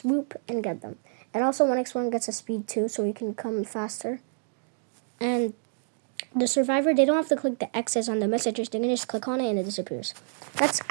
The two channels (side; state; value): left; silent; digital silence